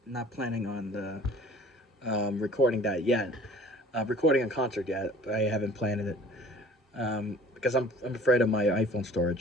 not planning on recording that yet. Recording a concert yet, but I haven't planned it because I'm afraid of my iPhone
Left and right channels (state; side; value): normal; both; correlation 0.48